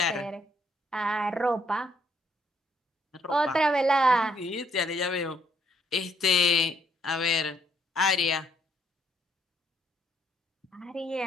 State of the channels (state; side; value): normal; both; correlation 0.70